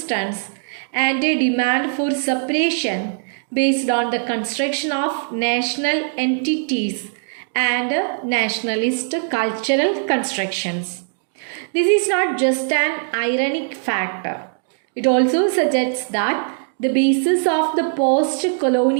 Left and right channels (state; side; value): silent; left; 64 dB below the other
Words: and a demand for separation based on the construction of national entities and nationalist cultural constructions. This is not just an ironic factor. It also suggests that the basis of the